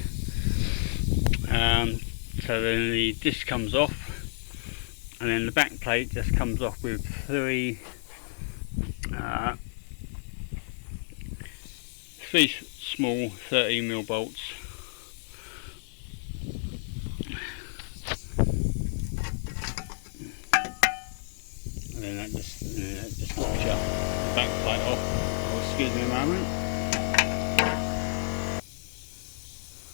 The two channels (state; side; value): silent; right; digital silence